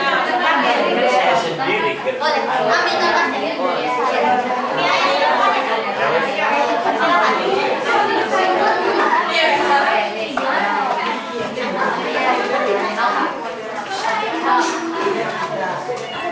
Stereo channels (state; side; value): identical; both; correlation 1.00